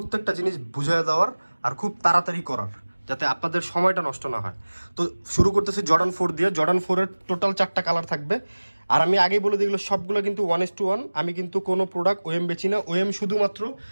জিনিস বুঝিয়ে দেওয়ার আর খুব তাড়াতাড়ি করার, যাতে আপনাদের সময়টা নষ্ট না হয়। তো শুরু করতেছি জর্ডান 4 দিয়ে। জর্ডান 4-এর টোটাল 4টা কালার থাকবে। আর আমি আগেই বলে দিই, এগুলো সবগুলো কিন্তু 1:1। আমি কিন্তু কোনো প্রোডাক্ট ওএম বেচি না। ওএম শুধুমাত্র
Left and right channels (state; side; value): inverted; both; correlation -1.00